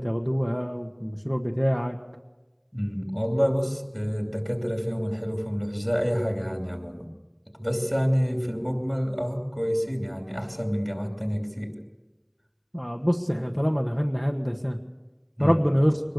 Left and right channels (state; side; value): identical; both; correlation 1.00